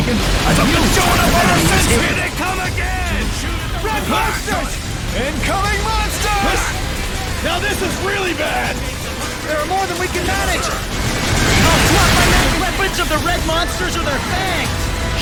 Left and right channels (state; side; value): identical; both; correlation 1.00